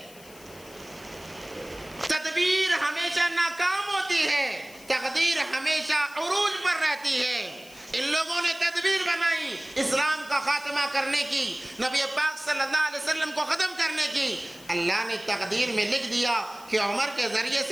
تدبیر ہمیشہ ناکام ہوتی ہے، تقدیر ہمیشہ عروج پر رہتی ہے۔ ان لوگوں نے تدبیر بنائی اسلام کا خاتمہ کرنے کی، نبی پاک صلی اللہ علیہ وسلم کو ختم کرنے کی۔ اللہ نے تقدیر میں لکھ دیا کہ عمر کے ذریعے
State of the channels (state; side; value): noise; left; hiss, 21 dB below the sound